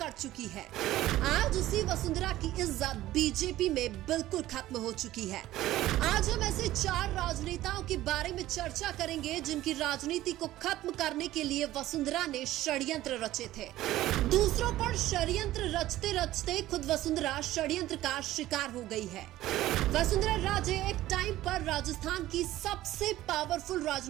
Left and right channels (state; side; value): quieter; left; 15.1 dB